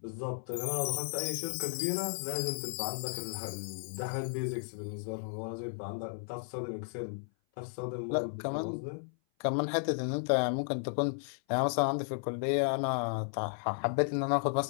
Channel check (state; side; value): silent; right; 55 dB below the other